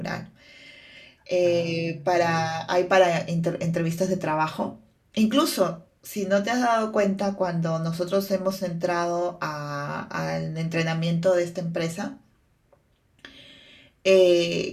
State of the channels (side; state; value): both; identical; correlation 1.00